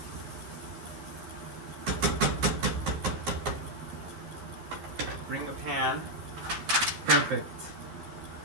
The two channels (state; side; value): late; left; 12 ms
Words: Bring the pan. Perfect.